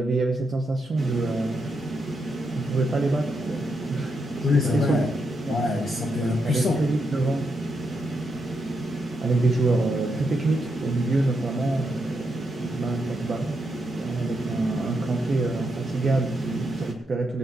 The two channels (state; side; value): normal; both; correlation 0.82